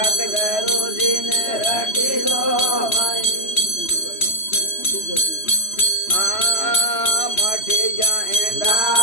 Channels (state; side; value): late; right; 3.1 ms